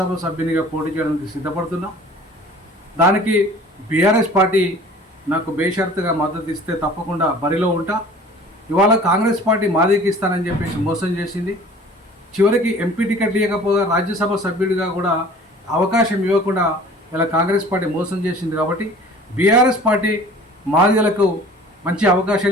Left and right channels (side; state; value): both; normal; correlation 0.46